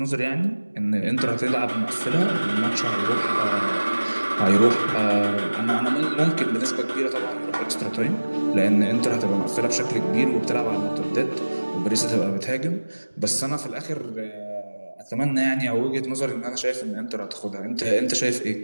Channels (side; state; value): both; inverted; correlation -1.00